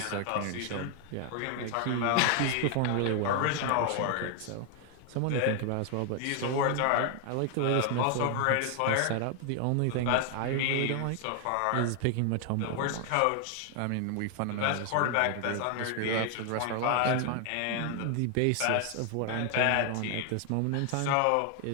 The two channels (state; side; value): different; both; correlation 0.00